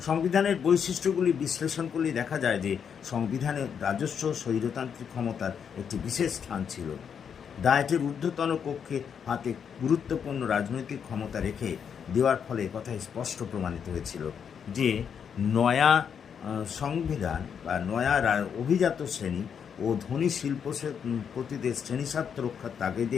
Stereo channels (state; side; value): quieter; right; 7.4 dB